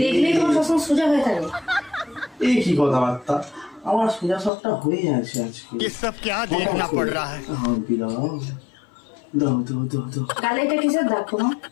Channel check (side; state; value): right; drops out; at 4.5 s